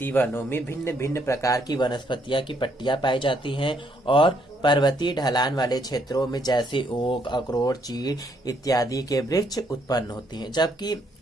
वनों में भिन्न भिन्न प्रकार की वनस्पतियां की पट्टियां पाई जाती हैं और पर्वतीय ढलान वाले क्षेत्रों में जैसे ओक, अखरोट, चीड़ इत्यादि के वृक्ष उत्पन्न होते हैं, जबकि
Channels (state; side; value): normal; both; correlation 0.71